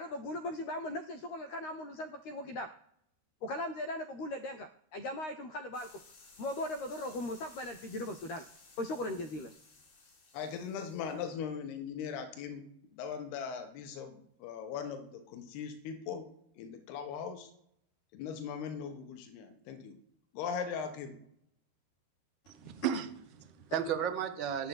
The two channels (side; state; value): right; late; 13 ms